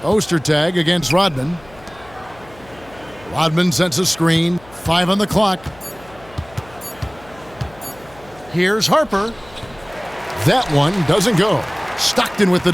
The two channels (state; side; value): noise; left; hum, 23 dB below the sound